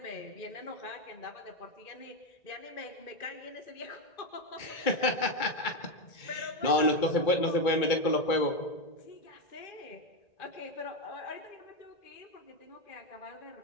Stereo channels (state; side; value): late; right; 2.3 ms